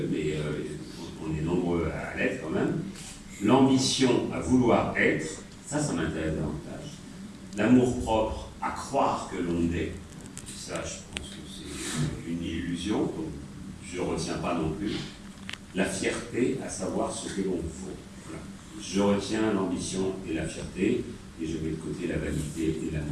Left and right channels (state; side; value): identical; both; correlation 1.00